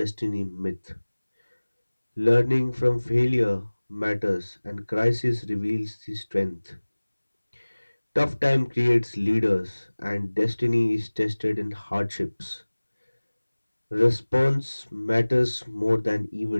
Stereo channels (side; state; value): both; inverted; correlation -1.00